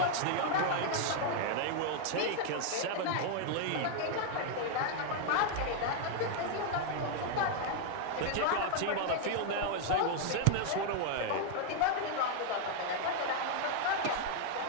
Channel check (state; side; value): different; both; correlation 0.00